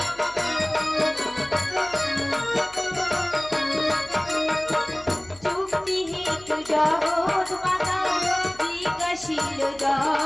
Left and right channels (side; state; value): left; noise; hum, 24 dB below the sound